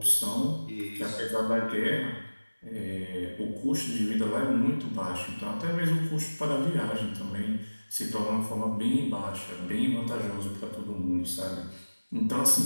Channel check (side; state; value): both; inverted; correlation -1.00